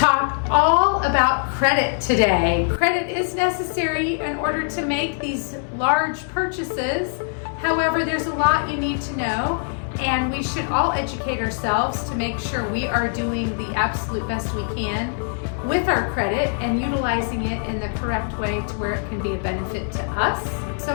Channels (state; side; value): silent; right; digital silence